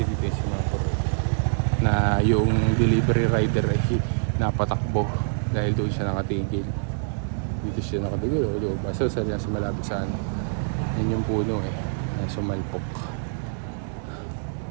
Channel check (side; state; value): left; silent; digital silence